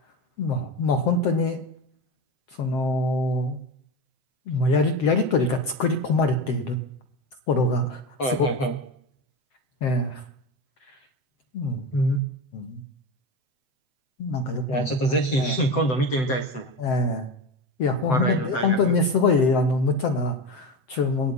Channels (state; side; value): late; right; 7.8 ms